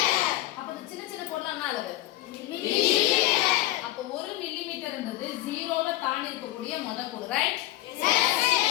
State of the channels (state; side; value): quieter; right; 16.0 dB